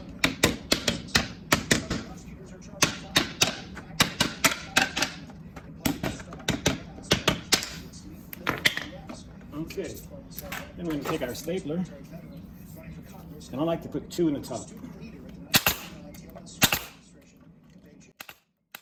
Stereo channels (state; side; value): identical; both; correlation 1.00